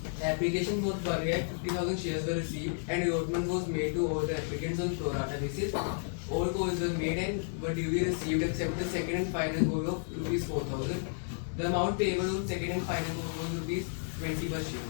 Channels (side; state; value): right; silent; 56 dB below the other